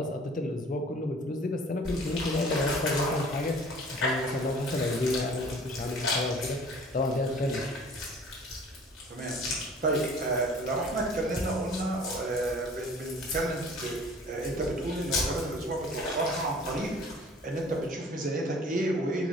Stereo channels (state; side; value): normal; both; correlation 0.49